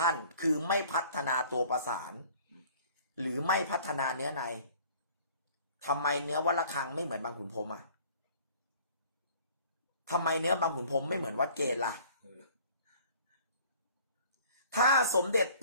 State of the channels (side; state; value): both; inverted; correlation -0.52